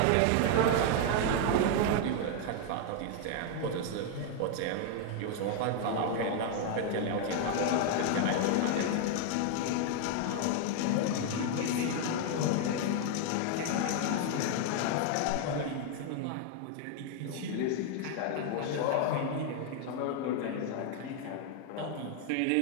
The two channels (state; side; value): different; both; correlation 0.00